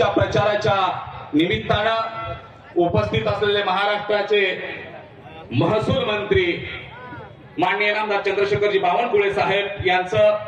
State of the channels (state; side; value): identical; both; correlation 1.00